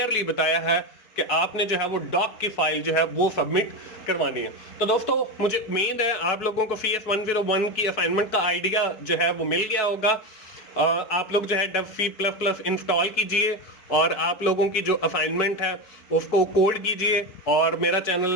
बताया है कि आपने जो है वो डॉक की फाइल जो है वो सबमिट करवानी है। तो दोस्तों मुझे उम्मीद है आप लोगों को CS101 की असाइनमेंट का आइडिया जो है वो मिल गया होगा। आप लोग जो है dev C++ इंस्टॉल कीजिए और आप लोगों की जो असाइनमेंट है उसको कोड कीजिए, और मेरा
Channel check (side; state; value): right; late; 4.7 ms